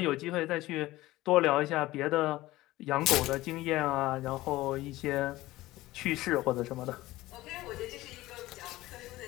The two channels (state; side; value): quieter; right; 17.6 dB